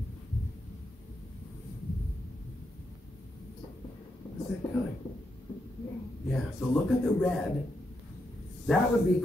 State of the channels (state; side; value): normal; both; correlation 0.82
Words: What's that color? Yeah, so look at the red. That would be